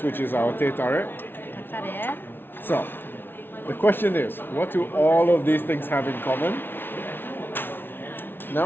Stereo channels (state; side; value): late; right; 0.10 ms